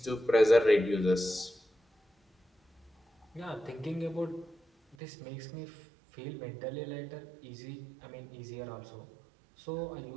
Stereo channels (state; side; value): drops out; left; at 5.0 s